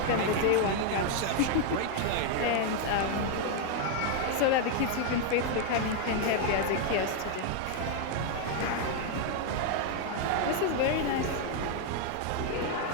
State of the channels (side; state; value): both; different; correlation 0.00